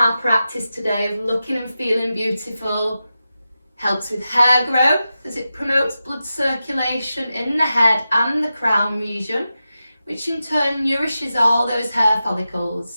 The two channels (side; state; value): both; inverted; correlation -0.92